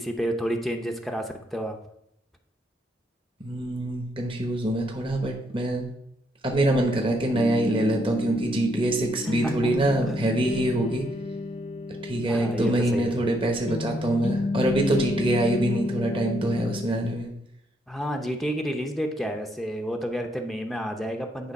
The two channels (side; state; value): both; normal; correlation 0.74